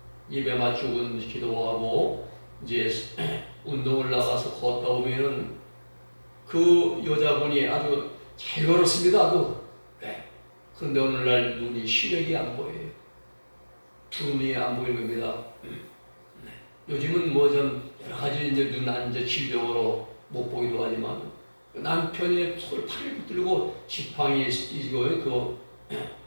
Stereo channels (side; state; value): both; inverted; correlation -1.00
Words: 예배 마치고 기도하고 이제 운동을 나가서 걷다 오면은 그 여자분이 아주 잘 걸었습니다. 아주. 그런데 오늘날 눈이 시력이 안 보여요. 두 눈이 안 보이는 겁니다. 요즘은 뭐 좀 여러 가지 이제 눈 이제 질병으로 못 보기도 하지만 남편이 손을 팔을 붙들고 지팡이 이거에 그